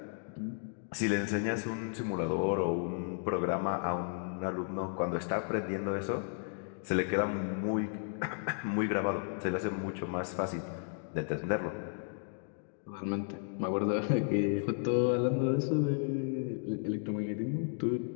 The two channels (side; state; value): right; silent; 55 dB below the other